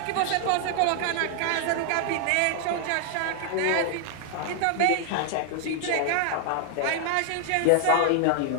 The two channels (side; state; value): both; different; correlation 0.00